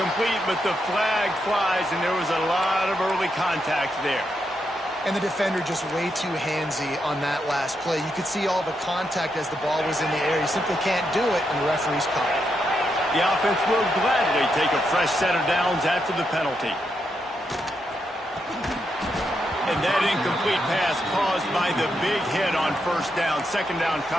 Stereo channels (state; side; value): normal; both; correlation 0.82